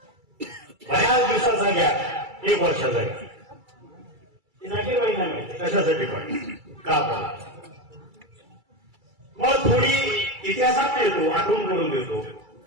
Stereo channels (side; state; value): left; late; 2.3 ms